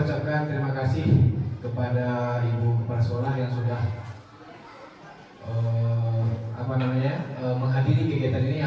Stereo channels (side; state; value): both; identical; correlation 1.00